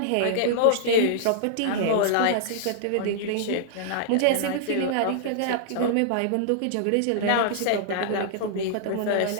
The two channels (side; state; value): both; different; correlation -0.01